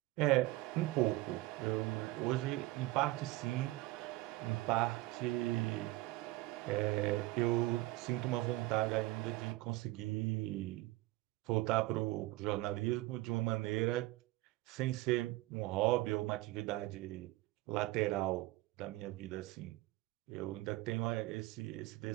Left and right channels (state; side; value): quieter; left; 19.2 dB